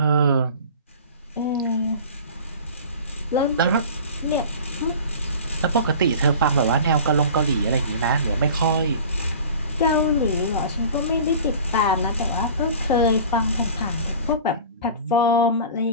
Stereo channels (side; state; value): both; inverted; correlation -0.39